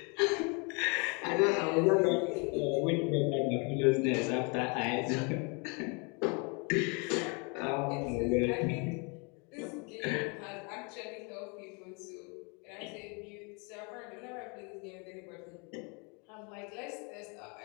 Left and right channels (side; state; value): right; quieter; 33.0 dB